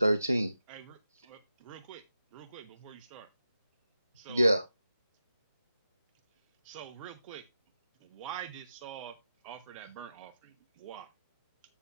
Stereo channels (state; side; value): inverted; both; correlation -0.91